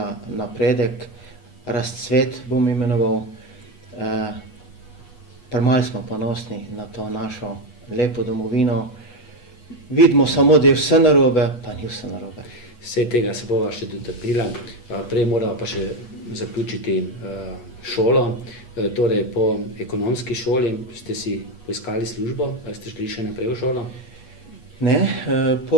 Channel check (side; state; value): right; late; 8.2 ms